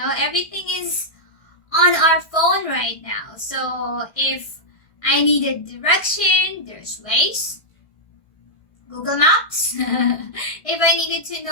everything is on our phone right now. So if I needed direction, there's Waze, Google Maps. If I needed to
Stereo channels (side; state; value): right; late; 1.6 ms